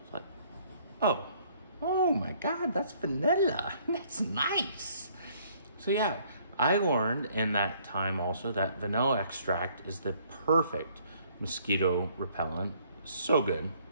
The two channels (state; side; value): inverted; both; correlation -0.62